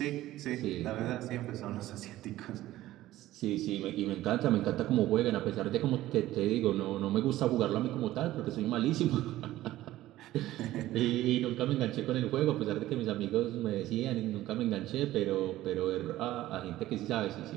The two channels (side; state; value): left; quieter; 15.3 dB